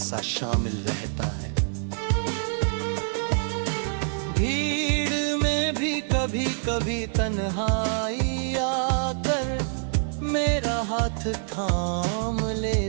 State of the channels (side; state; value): left; silent; digital silence